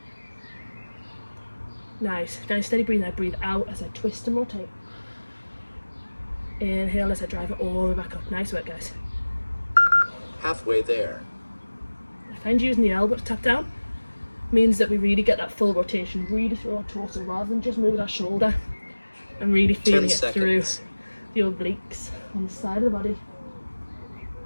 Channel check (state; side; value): inverted; both; correlation -1.00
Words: Nice. Nice steady breathe. I breathe out as I twist and rotate. Inhale as I drive it all the way back up. Nice work, guys. Halfway there. I find using the elbow to tap down means that we really get that full rotation, really through our torso rather than just moving our shoulder, and really feeling 10 it seconds. through the obliques on the side of the body.